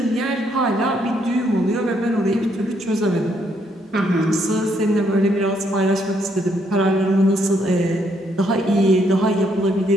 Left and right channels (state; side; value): normal; both; correlation 0.72